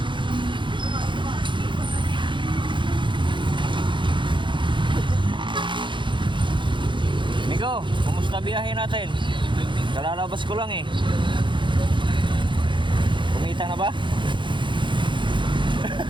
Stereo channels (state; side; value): late; left; 0.23 ms